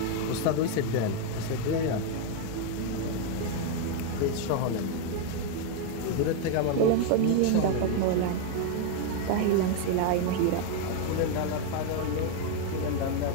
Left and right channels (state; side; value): different; both; correlation 0.01